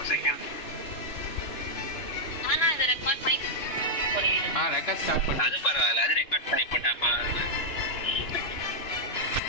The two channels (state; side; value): late; right; 2.9 ms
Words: ஆனா இத ரெக்கார்ட் பண்ணி ரெக்கார்ட் ஸ்டார்ட் பண்ணு. அது பரவாயில்ல, அது ரெக்கார்ட் பண்ணி போட்டா